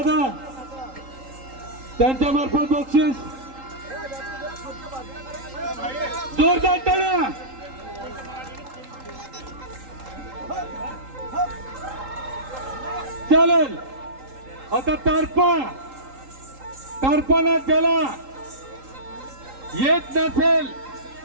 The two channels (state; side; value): late; left; 3.8 ms